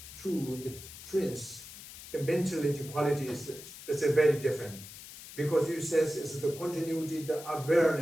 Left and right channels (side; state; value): left; noise; hiss, 14 dB below the sound